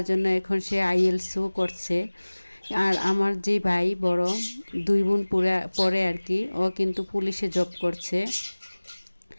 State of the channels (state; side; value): inverted; both; correlation -1.00